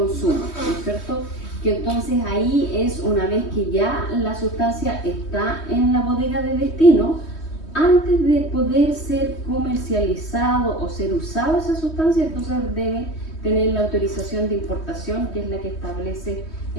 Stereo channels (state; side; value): late; right; 3.2 ms